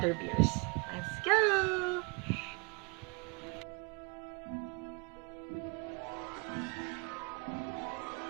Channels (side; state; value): left; quieter; 31.4 dB